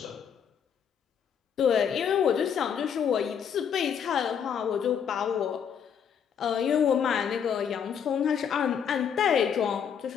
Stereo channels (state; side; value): quieter; right; 7.7 dB